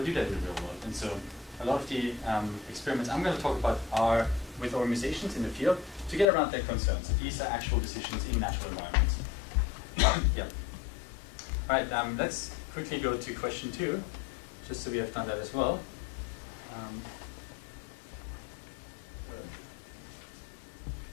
do that in the real world. And so a lot of the experiments I'm going to talk about are with organizations in the field to get around their concerns. These are actual decisions in natural environments. All right, let's quickly go to question 2, just so we have done that as well.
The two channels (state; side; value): drops out; right; at 6.2 s